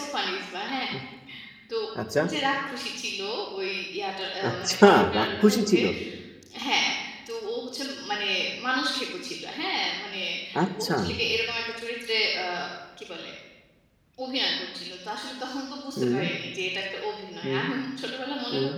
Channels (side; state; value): both; identical; correlation 1.00